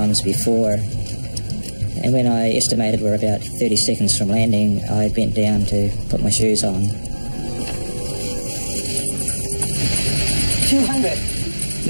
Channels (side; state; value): both; inverted; correlation -1.00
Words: before, and when I estimated we're about 30 seconds from landing, I bent down to put my shoes on. 200.